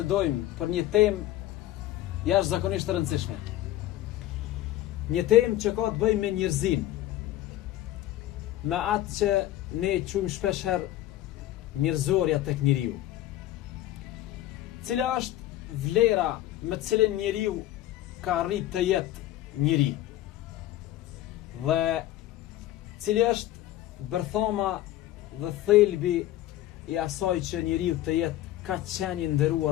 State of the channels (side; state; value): right; quieter; 14.3 dB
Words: për një temë jashtëzakonisht të rëndësishme. Një temë që ka të bëjë me njerëzin, me atë që ne quajmë shpeshherë njerëzorja tek njeriu. Cila është vlera me të cilën njeriu ka arrit të jetë njeri? Dhe cili është bërthama dhe thelbi i asaj që njeriu të jetë ka qenë i